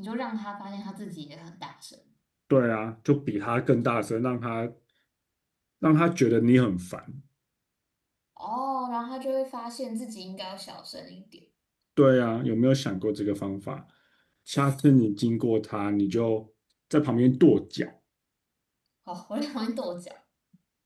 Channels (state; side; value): identical; both; correlation 1.00